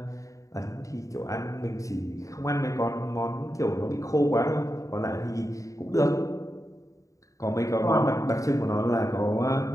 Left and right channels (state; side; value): late; right; 0.16 ms